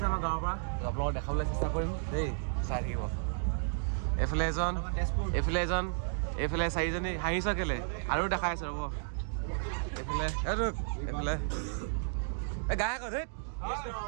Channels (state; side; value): silent; left; digital silence